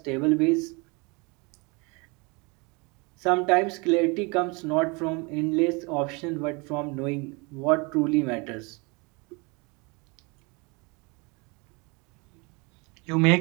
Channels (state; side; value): quieter; left; 29.1 dB